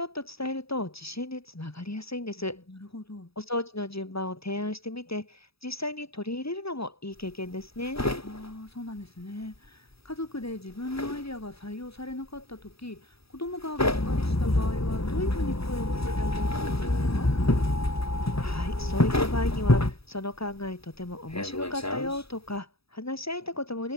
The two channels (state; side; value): late; right; 0.77 ms